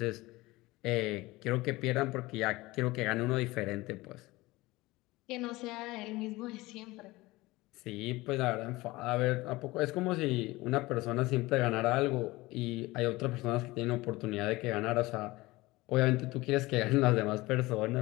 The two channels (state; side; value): quieter; right; 20.4 dB